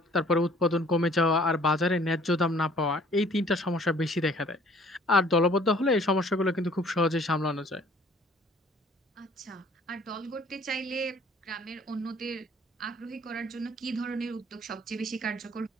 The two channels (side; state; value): both; normal; correlation 0.56